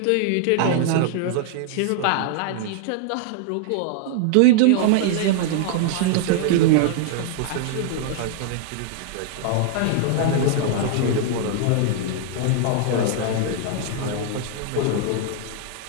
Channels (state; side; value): different; both; correlation -0.01